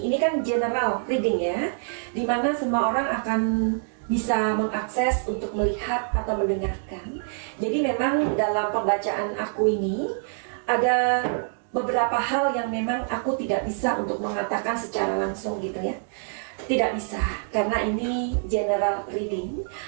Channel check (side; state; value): left; silent; digital silence